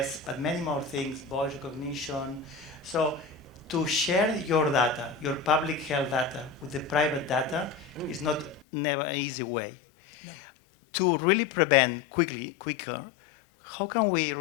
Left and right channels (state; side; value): drops out; right; at 8.7 s